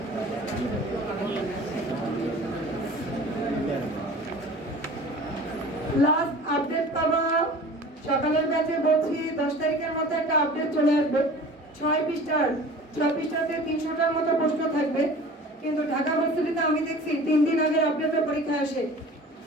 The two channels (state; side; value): normal; both; correlation 0.42